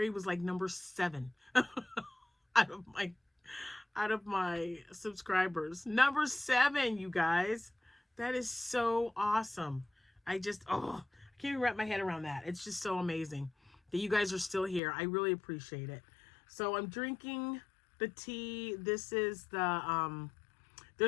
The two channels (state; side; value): drops out; right; at 14.8 s